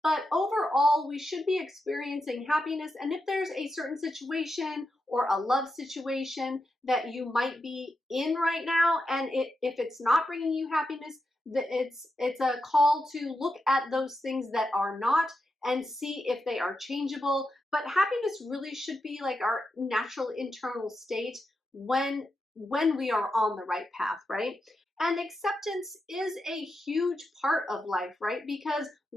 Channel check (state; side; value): normal; both; correlation 0.87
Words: but overall we should be experiencing happiness. And if there's a certain situation or a love situation that you might be in right now, and if it's not bringing you happiness, it's a call to look at those things that are not and see if they are changeable. But happiness really should be like our natural internal state when we are on the right path, right? And acceptance is a huge part of life, right? Because